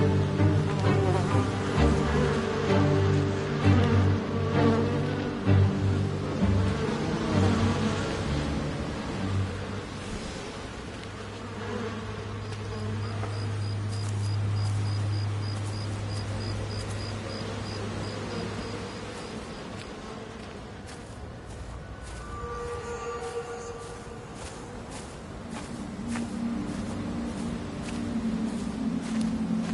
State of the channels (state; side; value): identical; both; correlation 1.00